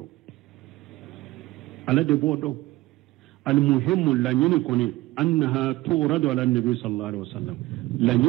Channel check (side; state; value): left; quieter; 18.5 dB